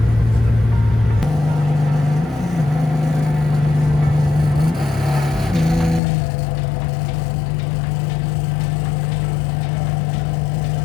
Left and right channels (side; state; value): right; drops out; at 6.0 s